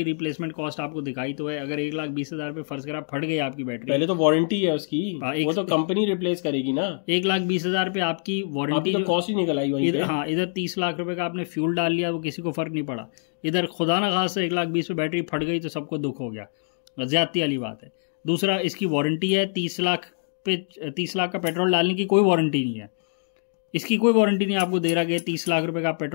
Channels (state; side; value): silent; right; digital silence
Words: रिप्लेसमेंट कॉस्ट आपको दिखाई तो है, अगर 1,20,000 पे फर्ज करा फट गई आपकी बैटरी, पहले तो वारंटी है उसकी, वो तो कंपनी रिप्लेस करेगी ना। 1,20,000 पे आपकी वारंटी तो कॉस्ट ही निकल आई वहीं पे। हाँ, इधर 30 लाख रुपए का आपने फ्यूल डाल लिया, वो किसी को फर्क नहीं पड़ा। इधर खुदा ना खास 1,20,000 पे बैटरी फट गई तो सबको दुख हो गया, ज्यादती वाली बात है। दूसरा, इसकी वारंटी है 30 लाख पे, 30 लाख का पेट्रोल डालने की कोई वारंटी नहीं है। इसकी कोई वारंटी नहीं आपको दे रहा कि 30 लाख रुपए का